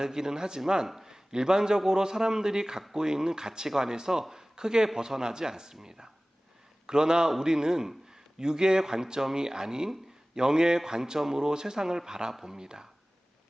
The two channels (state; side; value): normal; both; correlation 0.98